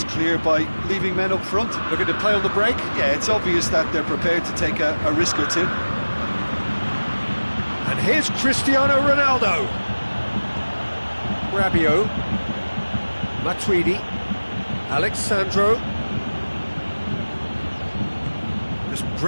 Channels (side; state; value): both; inverted; correlation -1.00